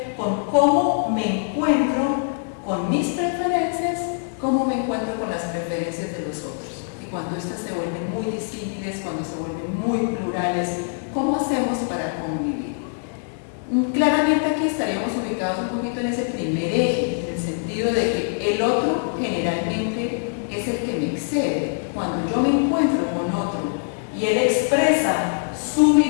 con cómo me encuentro con mis preferencias, cómo me encuentro con las preferencias de los otros. Y cuando estas se vuelven muy disímiles, cuando se vuelven muy plurales, ¿cómo hacemos para convivir? Claramente aquí estaríamos ubicados un poquito en ese primer eje, en el sentido de que el otro generalmente es el que me excede. Cuando yo me encuentro con otro y él expresa su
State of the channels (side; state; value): right; silent; 63 dB below the other